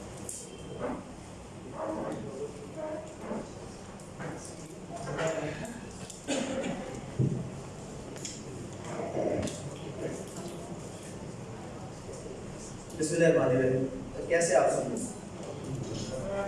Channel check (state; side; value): identical; both; correlation 1.00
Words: بسم اللہ الرحمن الرحیم. کیسے آپ سب؟